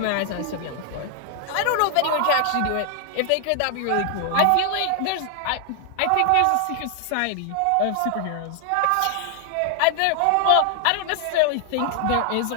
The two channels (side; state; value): both; different; correlation 0.00